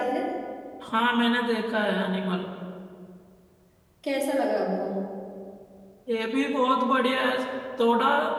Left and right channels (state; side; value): identical; both; correlation 1.00